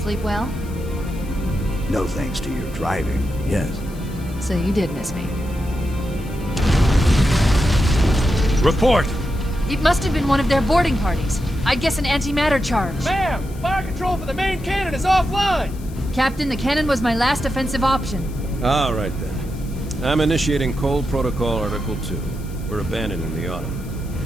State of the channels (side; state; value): left; noise; hiss, 22 dB below the sound